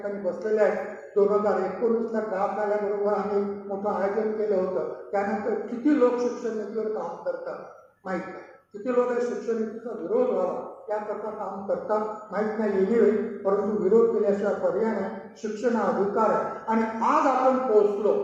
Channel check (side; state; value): both; identical; correlation 1.00